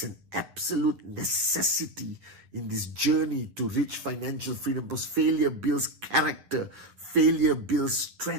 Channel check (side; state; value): left; late; 9.5 ms